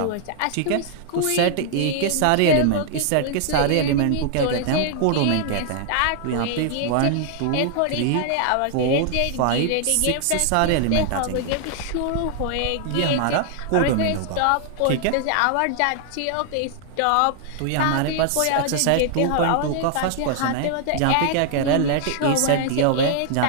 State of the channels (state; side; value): different; both; correlation -0.01